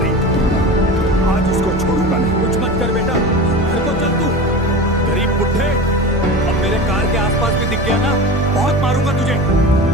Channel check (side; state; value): both; normal; correlation 0.30